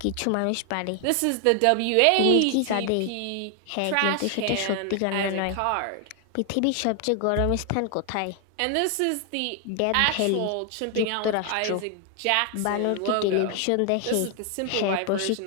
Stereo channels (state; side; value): different; both; correlation 0.00